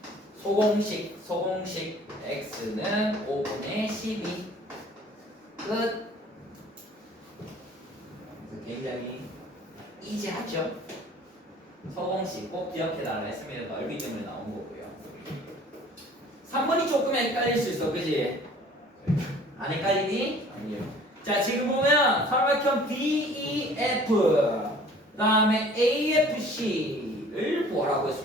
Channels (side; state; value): both; normal; correlation 0.51